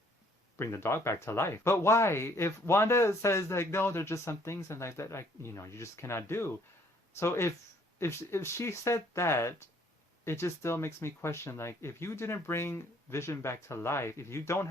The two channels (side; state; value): both; normal; correlation 0.62